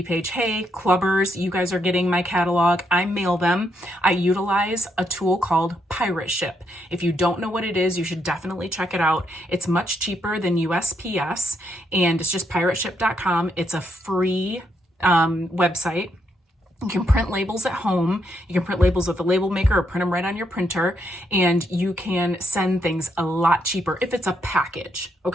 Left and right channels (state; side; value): normal; both; correlation 0.77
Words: page, hey, clubbers, you guys are getting my catalog. I mail them. I utilize a tool called Pirate Ship. If you don't know what it is, you should definitely check it out. It's much cheaper than USPS, and it's just pirateship.com. It's a free website. You can print labels at home. You can print labels with a label maker or print them right on your printer, and you can send things a lot cheaper if it's a package,